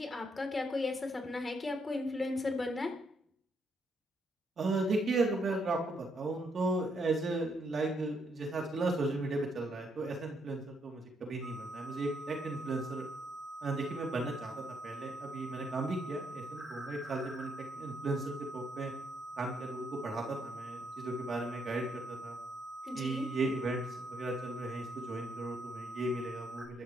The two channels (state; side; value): normal; both; correlation 0.75